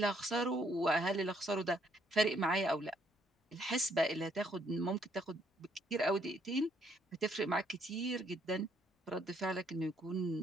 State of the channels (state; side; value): normal; both; correlation 0.69